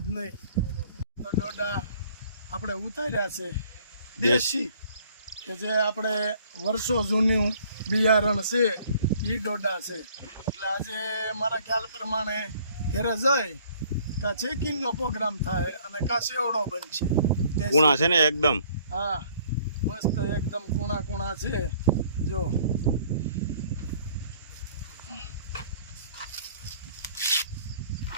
જ નહીં. તો દોડા આપણે ઉતાર્યા છે દેશી, કે જે આપણે વર્ષો જૂનું બિયારણ છે એ દોડા છે. એટલે આજે મારા ખ્યાલ પ્રમાણે ઘરે જાય કા ચેકિંગનો પ્રોગ્રામ થાય અને કા સેવડો બનશે. દેશી. કૂણા છે ને એકદમ. હા, મસ્ત એકદમ કૂણા છે. જો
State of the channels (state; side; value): inverted; both; correlation -0.58